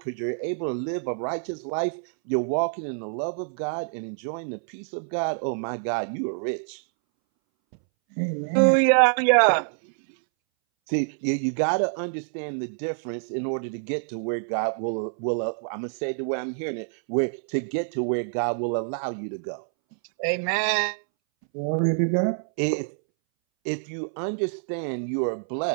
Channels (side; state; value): left; silent; 61 dB below the other